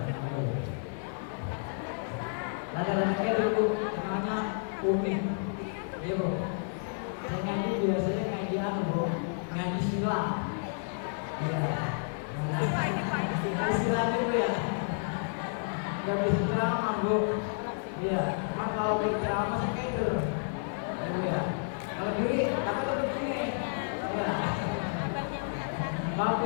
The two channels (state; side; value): silent; right; 57 dB below the other